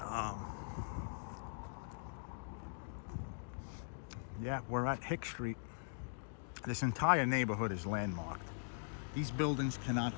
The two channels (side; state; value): right; silent; digital silence